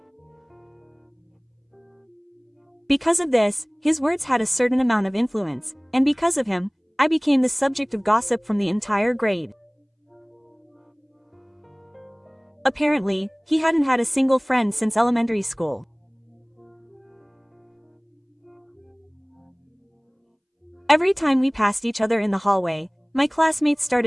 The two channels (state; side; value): identical; both; correlation 1.00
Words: Because of this, his words had a certain amount of influence, and because of him, I became the subject of gossip from the entire grade. Apparently, he hadn't had a single friend since elementary school. Every time we passed each other in the hallway, my classmates